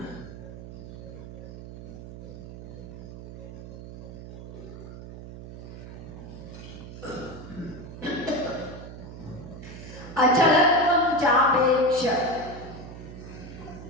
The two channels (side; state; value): right; noise; hum, 12 dB below the sound